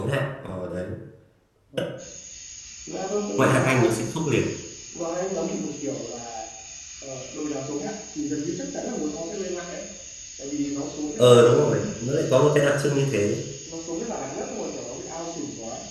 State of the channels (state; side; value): identical; both; correlation 1.00